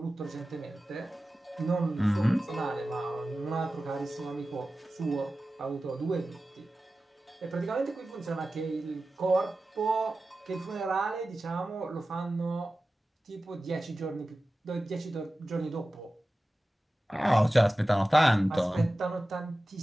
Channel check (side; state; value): both; normal; correlation 0.95